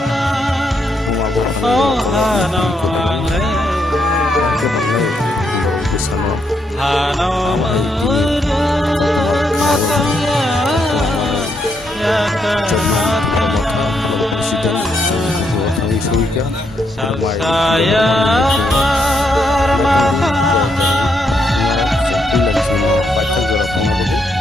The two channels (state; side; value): normal; both; correlation 0.77